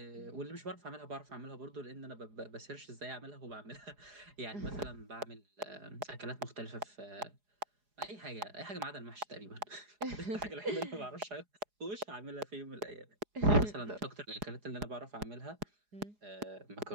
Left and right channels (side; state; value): left; late; 4.8 ms